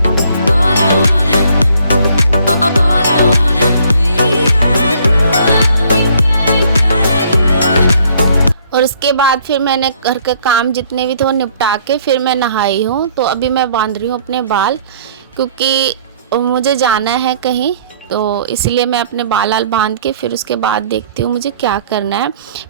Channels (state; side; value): inverted; both; correlation -0.61